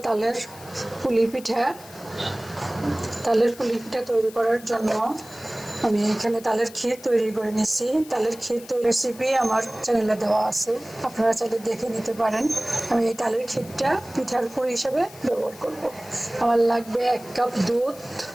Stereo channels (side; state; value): left; noise; hiss, 19 dB below the sound